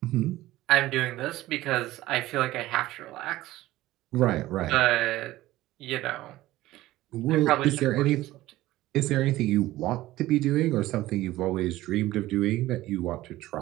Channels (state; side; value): quieter; left; 16.5 dB